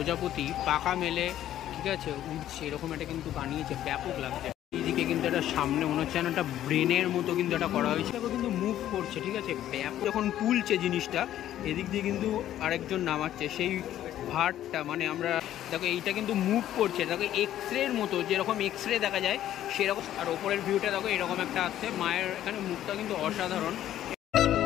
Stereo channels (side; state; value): right; quieter; 12.2 dB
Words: পাকা মেলে, ঠিক আছে, উঠছে, এরকম একটা কিন্তু বানিয়েছে, ব্যাপক লাগছে। এইদিকে কিন্তু একটা সামনে মনে হচ্ছে একটা ব্রেনের মতো কিন্তু এটা করা হয়েছে, কিন্তু মুভ করছে, ঠিক আছে, ব্যাপক যখন তুলছে জিনিসটা, এদিক দিয়ে কিন্তু আরেকজন নামাচ্ছে সেই ভারটা, মানে আমরা দেখো এইটা কিন্তু মুভ করছে, দেখো এক্স রের মতো, যেরকম এক্স রে দেখা যায় সেরকম। আর ওপরের ভিউটা দেখো এরকম একটা আসছে, মায়ের এখানে মুখটা কিন্তু অসাধারণ,